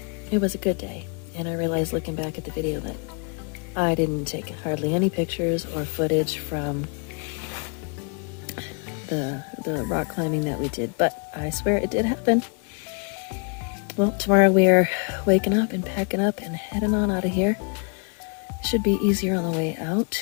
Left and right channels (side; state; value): right; quieter; 35.8 dB